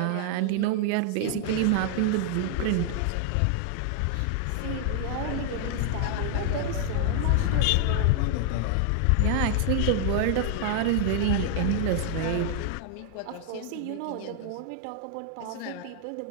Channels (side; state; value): both; different; correlation 0.00